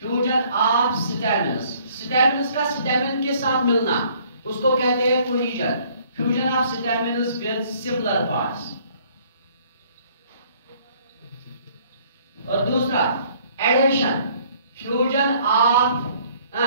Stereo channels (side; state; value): both; inverted; correlation -0.60